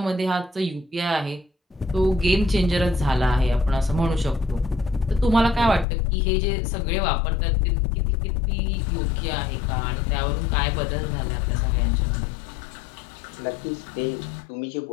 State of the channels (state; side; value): drops out; right; at 5.9 s